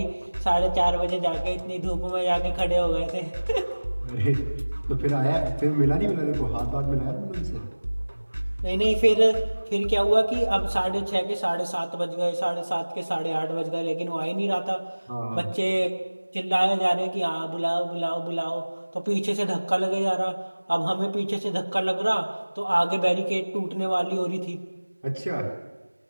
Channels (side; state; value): both; inverted; correlation -1.00